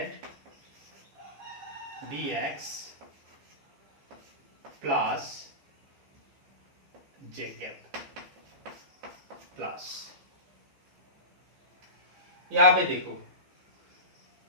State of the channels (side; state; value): left; late; 14 ms